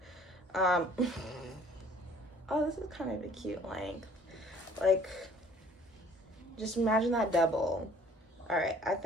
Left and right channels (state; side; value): normal; both; correlation 0.55